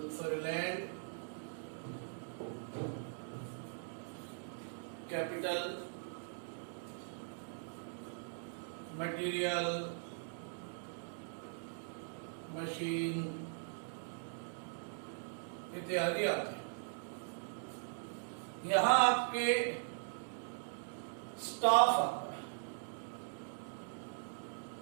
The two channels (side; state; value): left; silent; digital silence